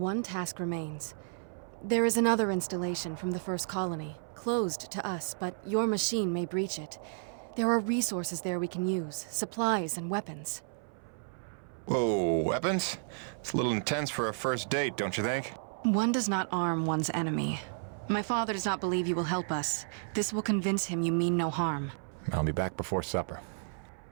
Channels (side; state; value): left; silent; 56 dB below the other